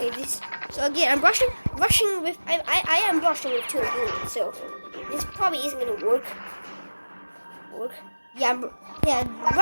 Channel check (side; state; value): both; inverted; correlation -1.00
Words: so again, I'm rushing with. I am rushing with 2 units, so this probably isn't gonna work. Yeah,